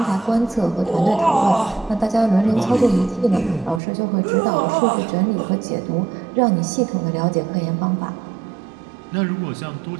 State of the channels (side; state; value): left; drops out; at 3.8 s